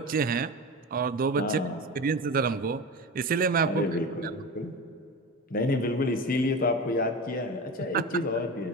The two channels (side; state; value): both; normal; correlation 0.27